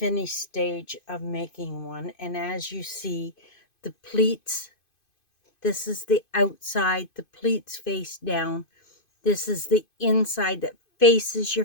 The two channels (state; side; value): late; right; 2.5 ms